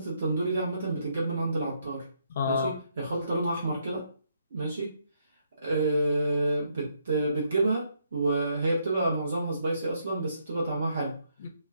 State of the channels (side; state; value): both; inverted; correlation -0.74